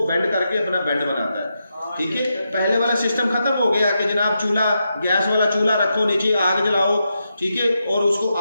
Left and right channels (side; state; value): both; inverted; correlation -0.86